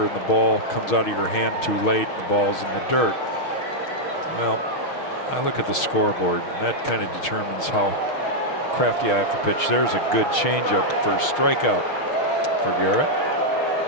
and the ball comes out of your hand too late, and the ball's in the dirt. Well, I look at the scoreboard, and that kind of determines how crafty I have to pitch. There's a good changeup for strikeout for Garrett.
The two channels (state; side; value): late; right; 6.4 ms